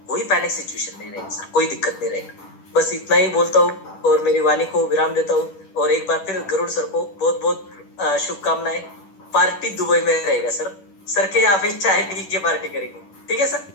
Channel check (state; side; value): late; right; 10 ms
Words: कोई पैनिक सिचुएशन नहीं रहेगी सर, कोई दिक्कत नहीं रहेगा। बस इतना ही बोलता हूँ और मेरी वाणी को विराम देता हूँ, और एक बार फिर गरुड़ सर को बहुत बहुत शुभकामनाएं। पार्टी दुबई में रहेगा सर के यहाँ पे चाय पी के पार्टी करेंगे, ठीक है sir?